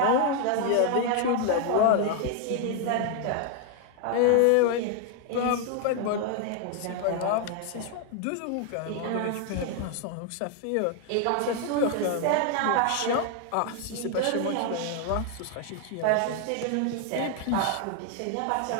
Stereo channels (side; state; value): both; different; correlation 0.00